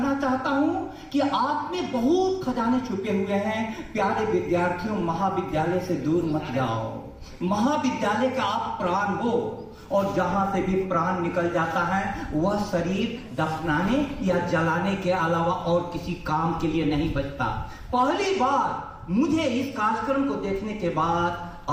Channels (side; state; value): both; identical; correlation 1.00